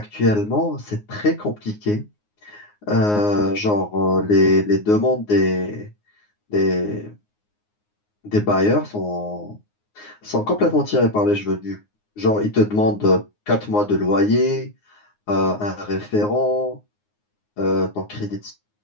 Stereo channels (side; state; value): right; late; 9.6 ms